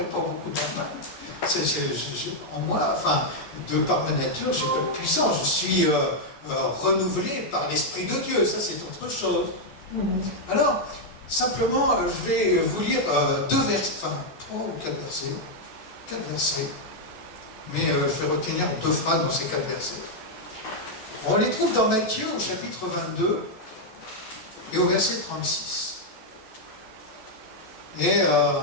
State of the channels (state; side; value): late; right; 14 ms